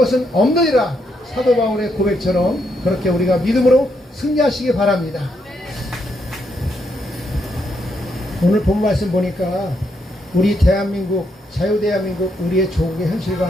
없느니라. 사도 바울의 고백처럼 그렇게 우리가 믿음으로 승리하시기 바랍니다. 오늘 본 말씀 보니까 우리 대한민국, 자유대한민국, 우리의 조국의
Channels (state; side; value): normal; both; correlation 0.78